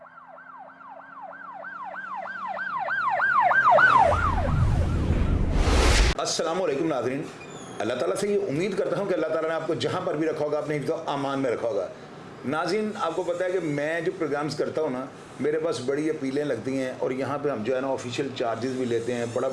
नाज़रीन, अल्लाह ताला से ये उम्मीद करता हूँ कि अल्लाह ताला ने आपको जहाँ पर भी रखा होगा अपने हिफ्ज़ व अमान में रखा होगा। नाज़रीन, आपको पता है कि मैं जो प्रोग्राम्स करता हूँ ना, मेरे पास बड़ी अपीलें लगती हैं और यहाँ पे हम जो है ना ऑफिशियल चार्जेस भी लेते हैं,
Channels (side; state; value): both; identical; correlation 1.00